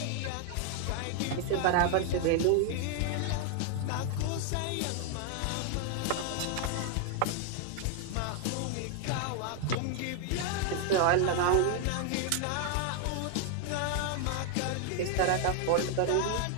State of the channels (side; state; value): both; different; correlation 0.00